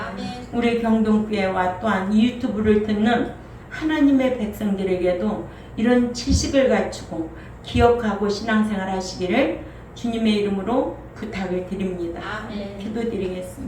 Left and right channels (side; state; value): both; identical; correlation 1.00